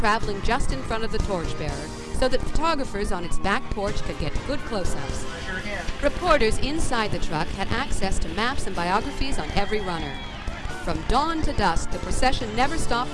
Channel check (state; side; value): identical; both; correlation 1.00